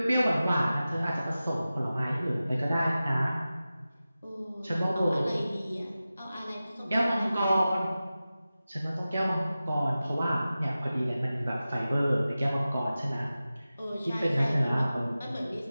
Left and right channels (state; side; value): inverted; both; correlation -0.95